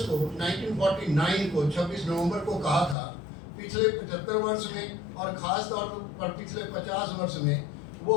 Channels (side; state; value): right; drops out; at 3.0 s